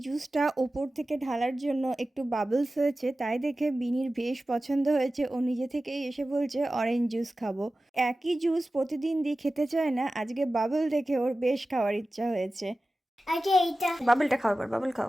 জুসটা ওপর থেকে ঢালার জন্য একটু বাবলস হয়েছে, তাই দেখে বিনির বেশ পছন্দ হয়েছে। ও নিজে থেকেই এসে বলছে অরেঞ্জ জুস খাবো। একই জুস প্রতিদিন দিয়ে খেতে চায় না, আজকে বাবল দেখে ওর বেশ খাওয়ার ইচ্ছা হয়েছে। আগে এইটা বাবলটা খাও, এবার বাবল খাও।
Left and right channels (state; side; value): normal; both; correlation 0.95